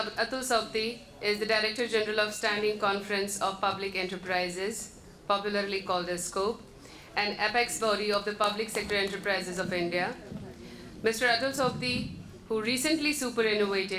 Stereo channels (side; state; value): both; identical; correlation 1.00